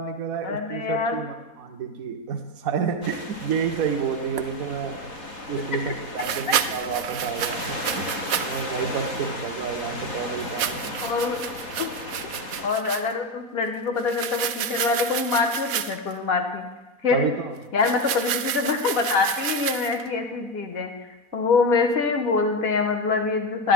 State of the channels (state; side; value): late; left; 4.1 ms